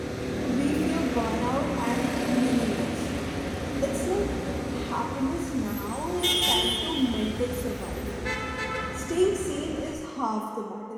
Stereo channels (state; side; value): identical; both; correlation 1.00